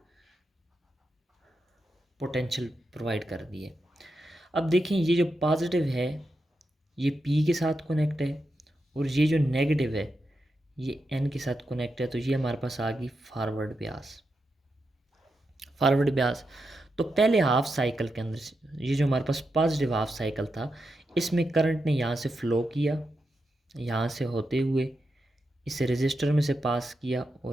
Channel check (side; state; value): both; normal; correlation 0.87